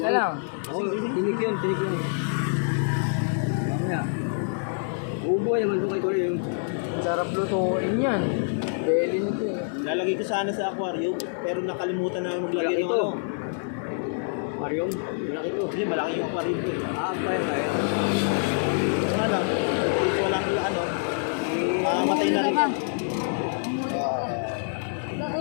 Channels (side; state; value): right; silent; digital silence